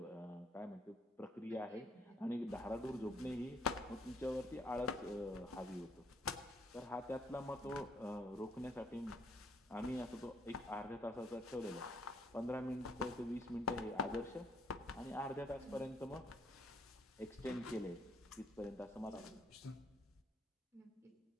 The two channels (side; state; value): both; normal; correlation 0.67